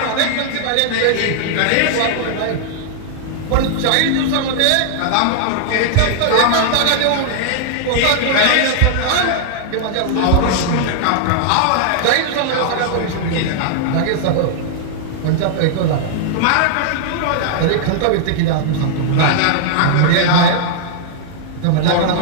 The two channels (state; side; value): different; both; correlation -0.01